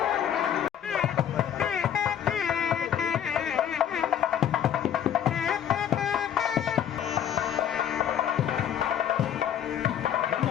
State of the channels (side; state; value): right; quieter; 9.6 dB